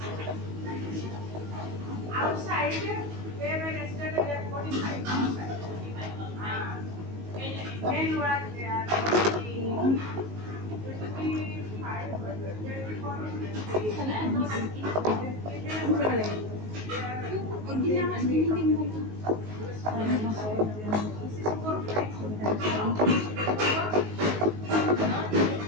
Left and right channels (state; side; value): late; left; 19 ms